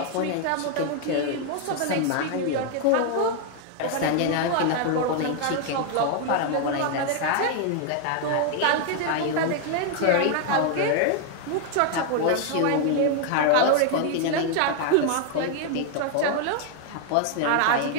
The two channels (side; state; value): both; different; correlation 0.00